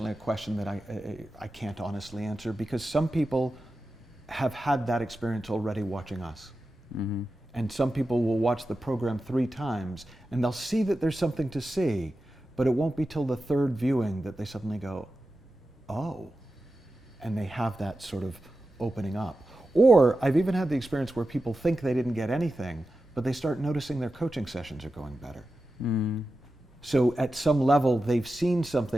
a question that I can't honestly answer, because some people have had that experience already watching us. Mm-hmm. And some people will watch the program 3 times and they'll see that there's something to see, but it won't be till the 3rd viewing that they suddenly go, oh, and they have that sort of opening up. Or I've even had the experience where people think they didn't get anything, but they start noticing their coaching sessions are going better. Mm. So at some level, they've seen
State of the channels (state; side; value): normal; both; correlation 0.92